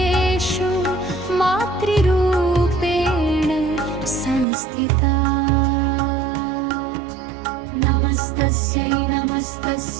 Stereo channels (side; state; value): left; drops out; at 4.5 s